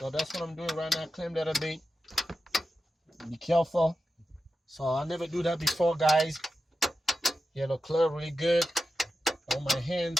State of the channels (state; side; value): normal; both; correlation 0.91